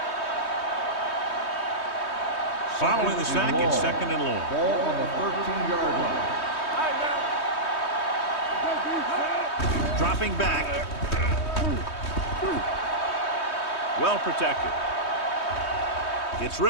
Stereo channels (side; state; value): right; late; 3.2 ms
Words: Following the sack, it's 2nd and long. Ball on the 13-yard line. Dropping back. Well protected. Gets